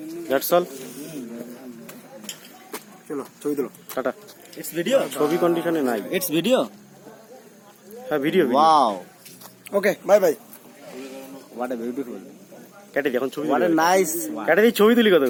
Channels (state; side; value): identical; both; correlation 1.00